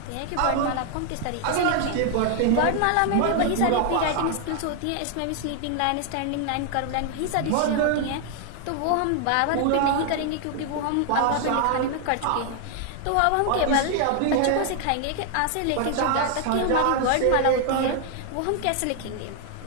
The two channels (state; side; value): different; both; correlation 0.00